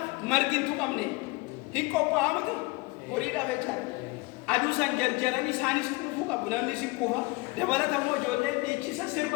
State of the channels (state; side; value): quieter; right; 25.1 dB